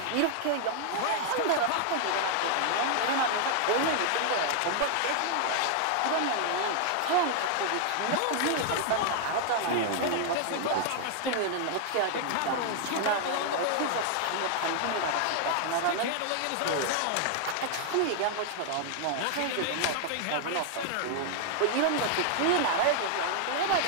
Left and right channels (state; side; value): different; both; correlation 0.00